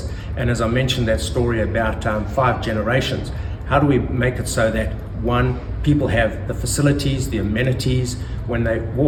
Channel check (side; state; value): both; identical; correlation 1.00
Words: And as I mentioned that story about 5 generations, how do we make it so that, one, people have the facilities, the amenities, when they